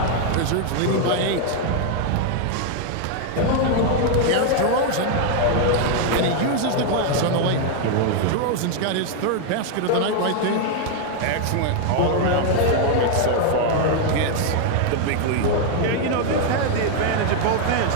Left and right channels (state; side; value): different; both; correlation 0.00